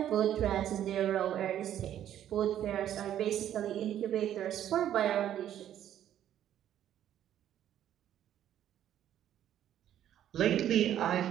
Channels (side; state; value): left; quieter; 11.1 dB